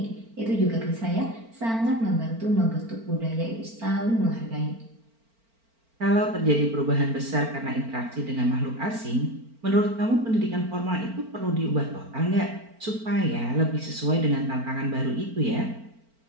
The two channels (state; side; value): late; left; 4.4 ms